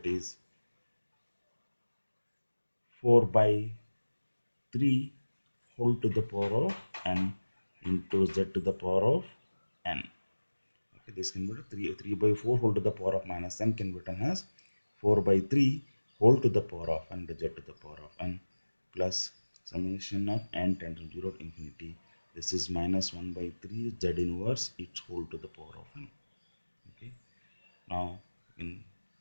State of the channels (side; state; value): both; inverted; correlation -1.00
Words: is 4 by 3 whole to the power of n into z to the power of n. Okay, this can be written 3 by 4 whole to the power of minus n can be written as 4 by 3 whole to the power of n to z to the power of n, plus summation of n tends from 0 to infinity. This is minus 1 by 3 z inverse its whole to the power of n. Okay. Now in